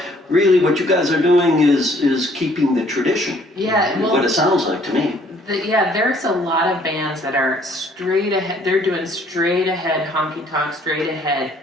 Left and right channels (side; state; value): both; normal; correlation 0.61